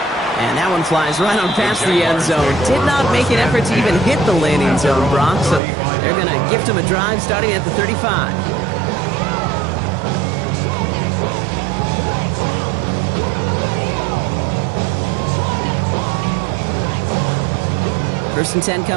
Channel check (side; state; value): left; drops out; at 5.6 s